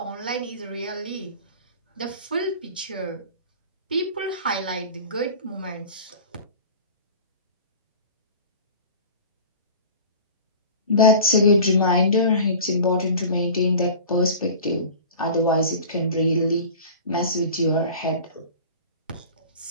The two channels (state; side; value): inverted; both; correlation -0.38